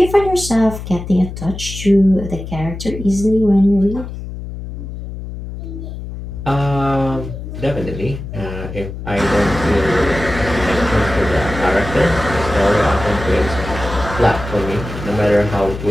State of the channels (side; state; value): left; noise; hum, 9 dB below the sound